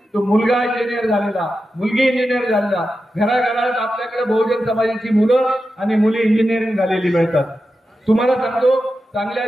तो मुलगा इंजिनियर झालेला, मुलगी इंजिनियर झालेला, घराघरात आपल्याकडे बहुजन समाजाची मुलं आणि मुली इंजिनिअरिंग झालेली मिळतात. तुम्हाला सांगतो, चांगल्या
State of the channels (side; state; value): both; normal; correlation 0.91